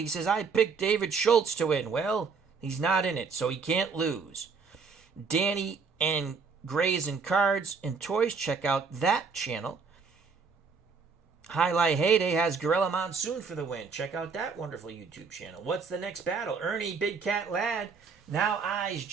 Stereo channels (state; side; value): quieter; left; 5.2 dB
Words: says, I picked David Schultz to win. Well, he's not in it, so he can't lose. Danny and Grays and Cards and Toys, check out that channel. Highlight Heyday has Gorilla Monsoon for the win. Check out that wonderful YouTube channel. What's the next battle? Ernie Big Cat Ladd now eyes